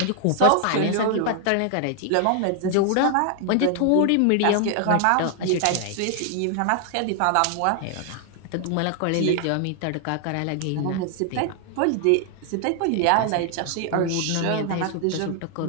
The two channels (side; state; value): both; different; correlation 0.00